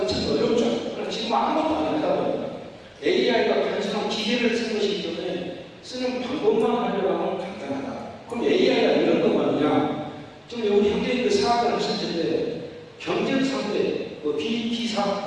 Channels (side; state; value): both; identical; correlation 1.00